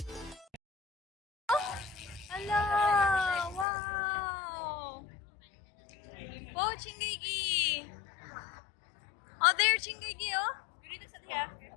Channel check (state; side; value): drops out; right; at 3.7 s